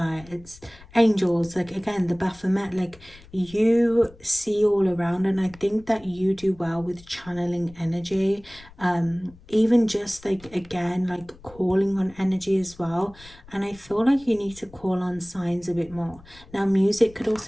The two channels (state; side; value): noise; left; rumble, 23 dB below the sound